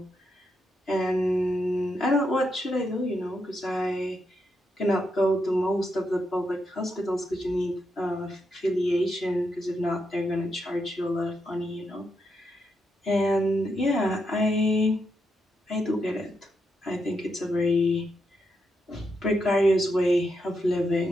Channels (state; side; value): normal; both; correlation 0.83